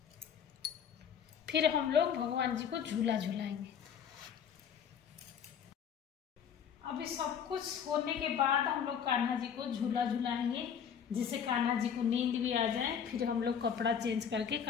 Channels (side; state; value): right; quieter; 7.8 dB